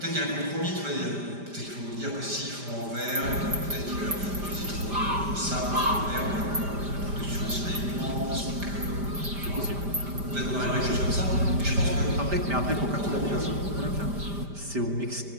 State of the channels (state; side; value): late; left; 5.0 ms